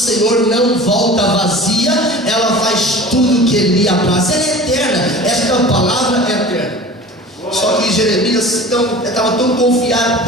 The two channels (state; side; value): normal; both; correlation 0.39